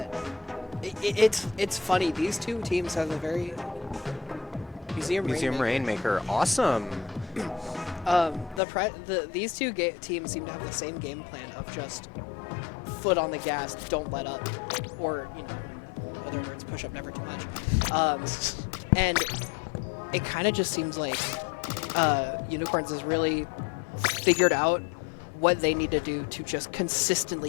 it's funny. These two teams have a very Museum Rainmaker. Awesome. These two teams seem to have the same game plan of just foot on the gas, don't let up, or in other words, push up never too much. And it kind of just seems like Unicorns has really figured out what they need to do to just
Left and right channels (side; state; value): right; drops out; at 8.6 s